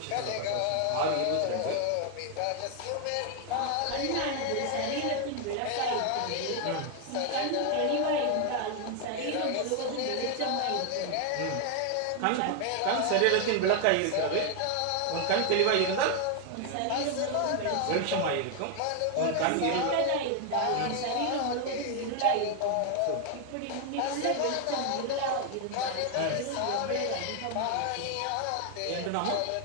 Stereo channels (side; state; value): both; different; correlation 0.00